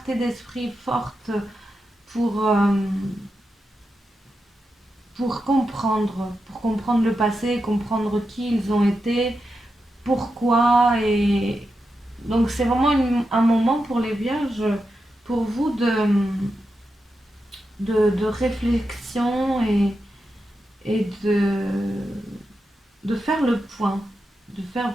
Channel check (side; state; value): both; normal; correlation 0.88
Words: d'esprit forte pour, euh, pour comprendre le passé, comprendre qui ils ont été, pourquoi. Et donc c'est vraiment un moment pour les vierges, pour vous de réflexion et de faire le point, de faire